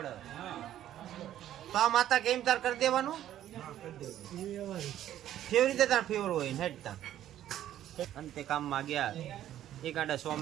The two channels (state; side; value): quieter; left; 12.0 dB